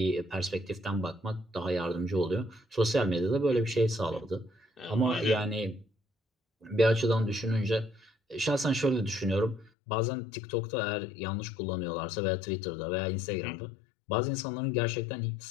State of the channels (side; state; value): right; drops out; at 9.7 s